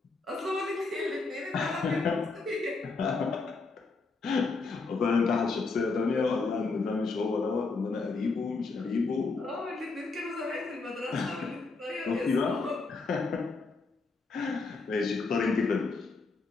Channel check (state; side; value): quieter; right; 4.0 dB